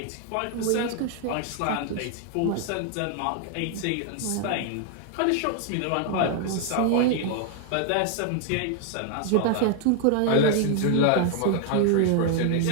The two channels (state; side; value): different; both; correlation 0.00